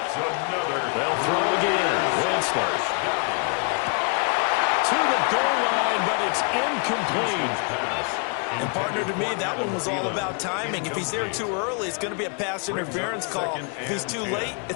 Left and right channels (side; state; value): right; quieter; 37.3 dB